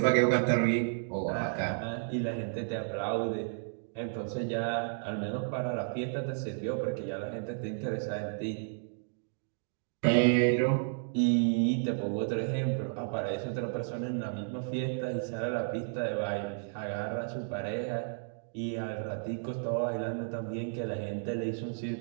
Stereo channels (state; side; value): silent; left; digital silence